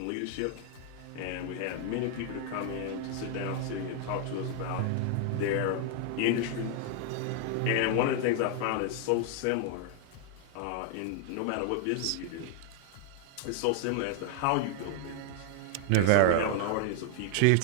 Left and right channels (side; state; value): both; different; correlation 0.00